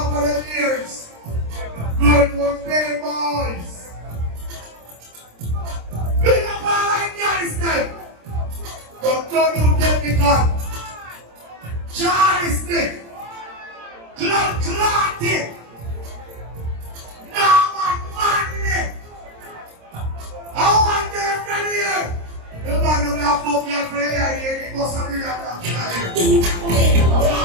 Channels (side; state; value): left; late; 26 ms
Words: for the years. Good for big boys. Big up all Afghanistan. But don't you get me gun. Charlie stick. Clotted. Now I'm money. I want them from here. The man who have put me for here, he must have been up here.